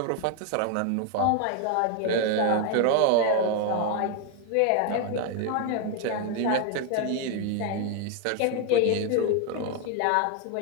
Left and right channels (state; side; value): different; both; correlation 0.01